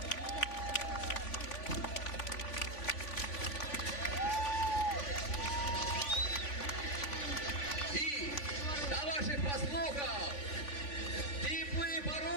І до ваших послухав теплий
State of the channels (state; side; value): late; right; 3.5 ms